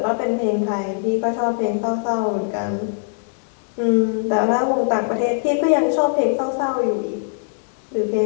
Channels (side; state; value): right; silent; digital silence